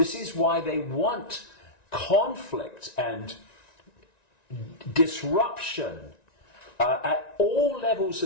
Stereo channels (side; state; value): right; late; 1.9 ms